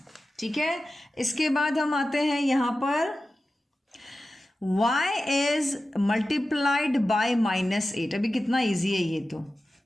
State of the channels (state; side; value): normal; both; correlation 0.94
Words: ठीक है। इसके बाद हम आते हैं यहाँ पर y इज मल्टीप्लाइड बाय -8, अभी कितना इजी है ये, तो